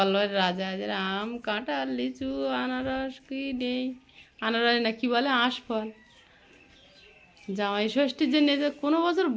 রাজা যারা আম কাঁঠাল লিচু আনারস কি নেই, আনারস না কি বলে আঁশফল। জামাই ষষ্ঠীর জন্য যে কোনো বছর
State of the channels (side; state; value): both; identical; correlation 1.00